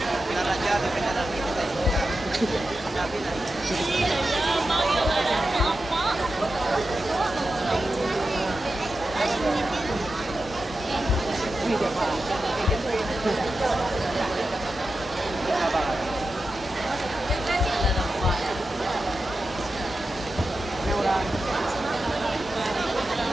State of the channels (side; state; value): both; normal; correlation 0.91